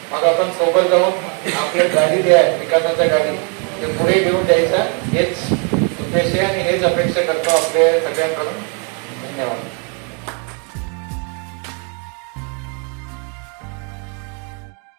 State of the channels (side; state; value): left; quieter; 38.0 dB